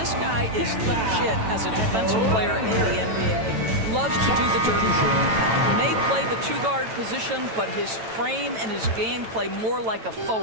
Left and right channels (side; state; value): left; late; 9.1 ms